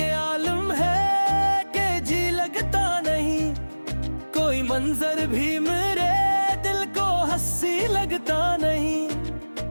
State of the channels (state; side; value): inverted; both; correlation -1.00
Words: आलम है कि जी लगता नहीं, कोई मंजर भी मेरे दिल को हंसी लगता नहीं।